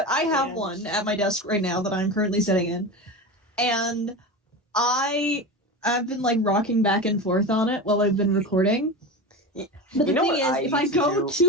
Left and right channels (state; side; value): normal; both; correlation 0.26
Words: I have one at my desk right now that I'm currently sitting in, and I've been like rocking back and forth on it while I've been recording. But the thing is, if I go